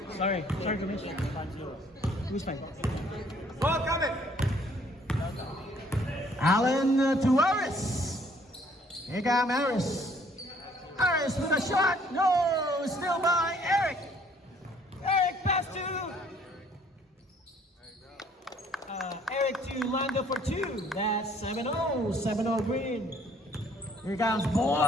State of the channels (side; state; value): both; normal; correlation 0.61